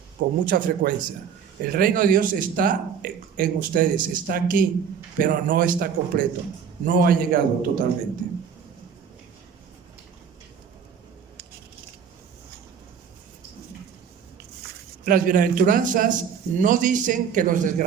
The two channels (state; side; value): quieter; left; 7.2 dB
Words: con mucha frecuencia. El reino de Dios está en ustedes, está aquí, pero no está completo, no ha llegado totalmente. Las bienaventuranzas no dicen que los